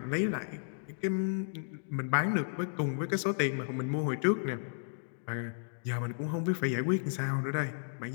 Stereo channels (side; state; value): right; silent; digital silence